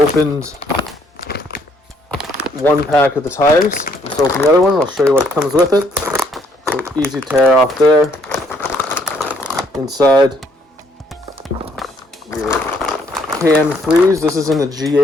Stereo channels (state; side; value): normal; both; correlation 0.67